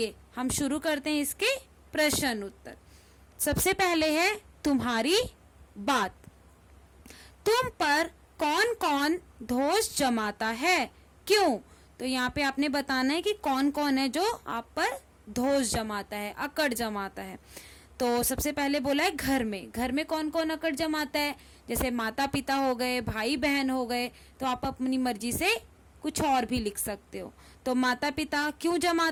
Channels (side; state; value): both; identical; correlation 1.00